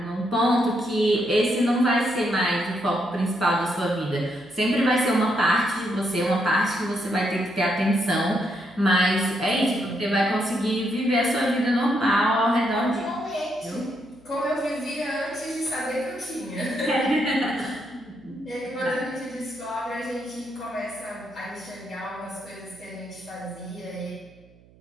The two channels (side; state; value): right; noise; hum, 27 dB below the sound